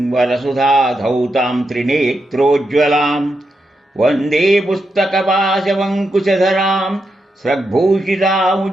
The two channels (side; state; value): both; normal; correlation 0.85